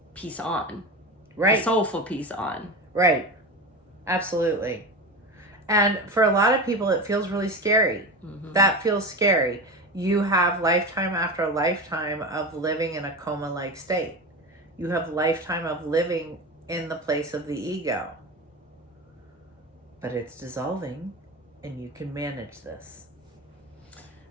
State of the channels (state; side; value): normal; both; correlation 0.25